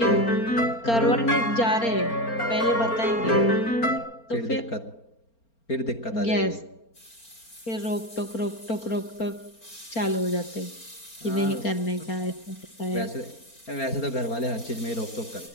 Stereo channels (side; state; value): right; late; 4.4 ms